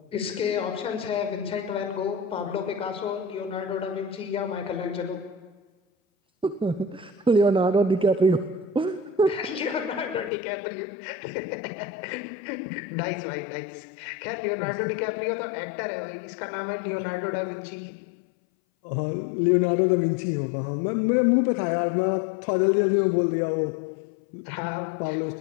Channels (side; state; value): right; drops out; at 10.3 s